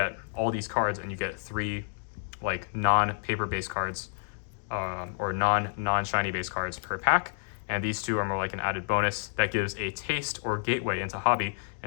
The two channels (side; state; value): right; silent; 58 dB below the other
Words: all these cards and you get 3 like non-paper based cards or non-shiny based cards per pack. And these 2 are more like an added bonus that gives a taste or gateway into hobby.